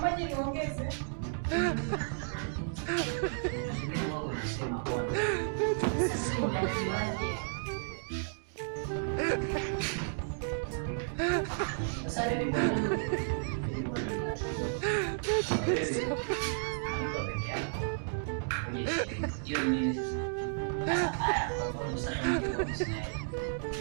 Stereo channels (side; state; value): left; silent; digital silence